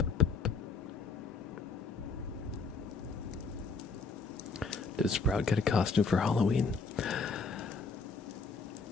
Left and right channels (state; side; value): quieter; right; 4.5 dB